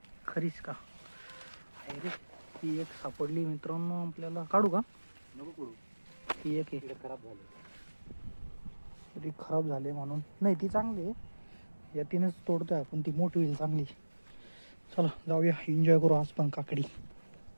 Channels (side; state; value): both; inverted; correlation -1.00